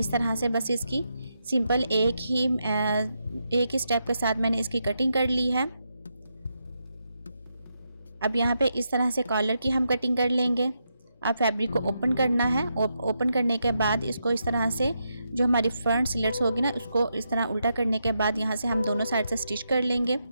तरह से बस इसकी सिंपल एक ही स्टेप के साथ मैंने इसकी कटिंग कर ली है। अब यहाँ पे इस तरह से कॉलर की हम कटिंग कर लेंगे। आप फैब्रिक को ओपन करना है और ओपन करने के बाद इसको इस तरह से जो हमारी फ्रंट सिलट्स होगी ना उसको इस तरह उल्टा करने के बाद यहाँ से हम दोनों साइड से स्टिच कर लेंगे।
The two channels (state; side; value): inverted; both; correlation -0.83